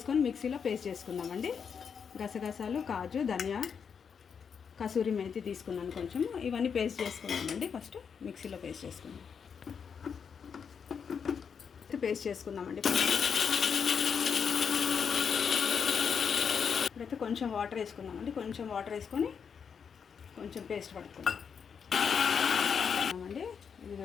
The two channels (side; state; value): right; quieter; 6.7 dB